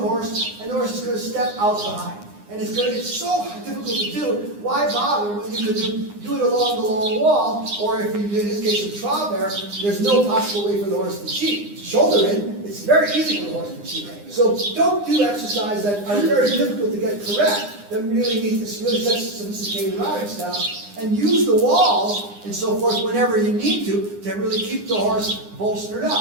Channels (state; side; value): late; left; 9.8 ms